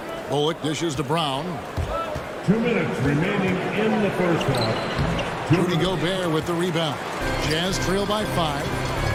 Bullock dishes to Brown. 2 minutes remaining in the first half. Rudy Gobert with the rebound. Jazz trail by 5.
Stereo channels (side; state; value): both; identical; correlation 1.00